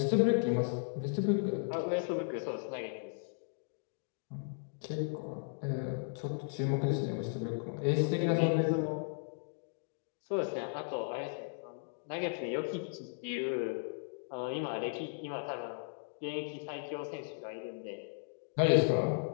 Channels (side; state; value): right; silent; digital silence